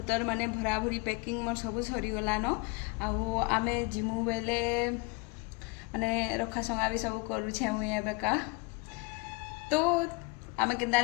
माने भरा भरी पैकिंग मोर सब सरी गला न आउ आमे जिमु बेले माने रखा संगा भी सब करू छे मुई एबेका। तो आमे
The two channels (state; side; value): quieter; right; 28.6 dB